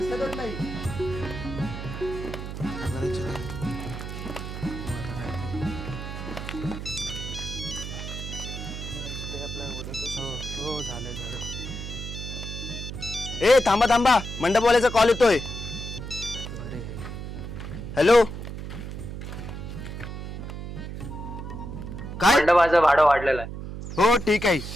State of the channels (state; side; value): noise; right; hum, 8 dB below the sound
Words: नाही. हो झालं झालं. ए थांबा थांबा, मंडपवाल्याचा कॉल येतोय. बरे. हॅलो. काय? मंडपाचं भाडं वाढलेलं आहे. हो ठीक आहे,